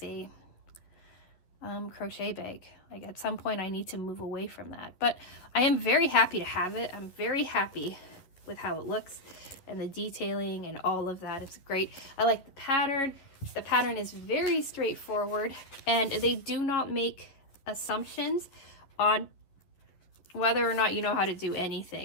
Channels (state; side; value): late; right; 11 ms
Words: a crochet bag. Like at some point I need to move away from that, but I am very happy to have it. I'm very happy with how it looks and the detailing and all of that. It's great. I like the pattern. The pattern is very straightforward, and they do not make assumptions on whether or not you know how to do